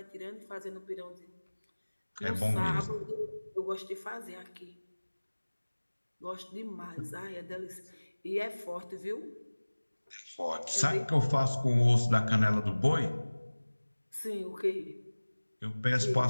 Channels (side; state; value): both; inverted; correlation -1.00